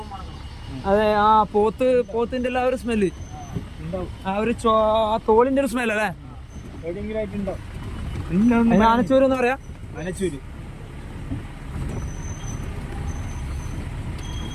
അതെ, ആ പോത്തിന്റെ ആ ഒരു സ്മെല്ല്, ആ ഒരു തോലിന്റെ ഒരു സ്മെല്ല് അല്ലേ? ആനച്ചൂര് എന്ന് പറയാ. ആനച്ചൂര്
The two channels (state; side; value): identical; both; correlation 1.00